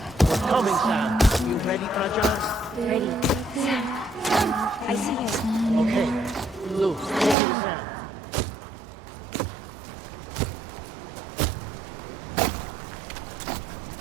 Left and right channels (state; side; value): drops out; left; at 7.4 s